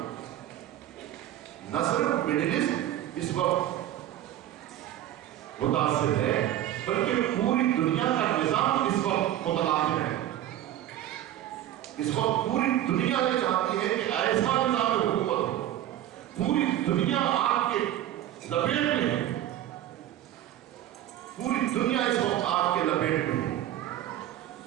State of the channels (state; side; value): quieter; left; 12.7 dB